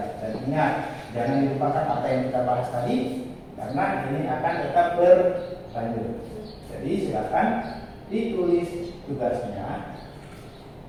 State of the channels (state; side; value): identical; both; correlation 1.00